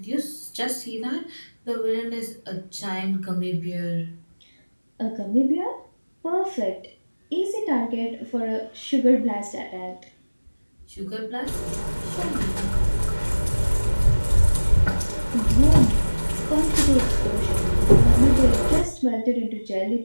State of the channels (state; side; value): inverted; both; correlation -1.00